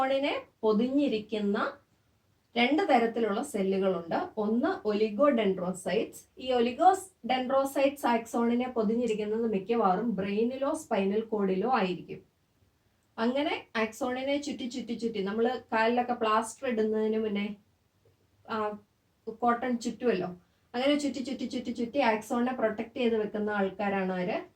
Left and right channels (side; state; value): both; identical; correlation 1.00